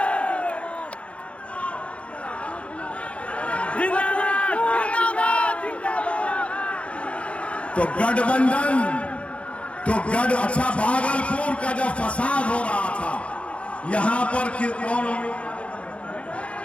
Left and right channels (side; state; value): right; late; 0.062 ms